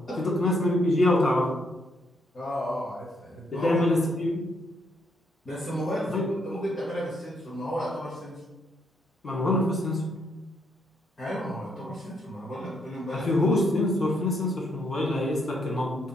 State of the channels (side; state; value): both; normal; correlation 0.74